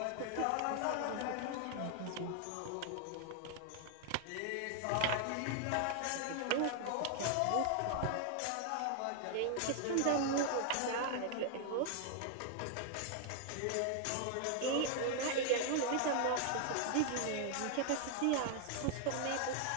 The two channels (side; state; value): both; different; correlation 0.00